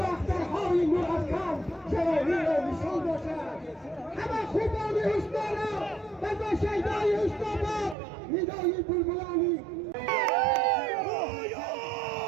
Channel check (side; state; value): left; drops out; at 8.0 s